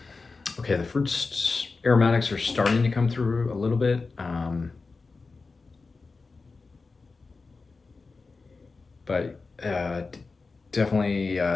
Okay, the fruits aromatics are starting to come through a little bit. But definitely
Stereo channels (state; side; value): quieter; right; 4.1 dB